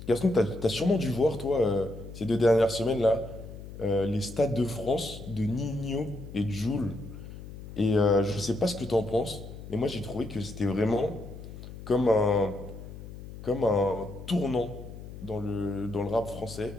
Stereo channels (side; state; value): left; noise; hum, 13 dB below the sound